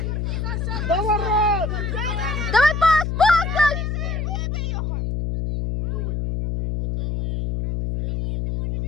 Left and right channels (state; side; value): noise; left; hum, 2 dB below the sound